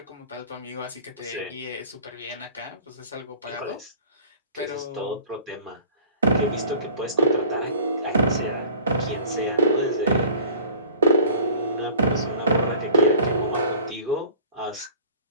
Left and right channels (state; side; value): inverted; both; correlation -0.45